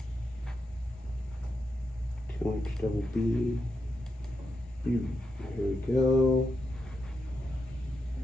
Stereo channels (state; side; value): normal; both; correlation 0.85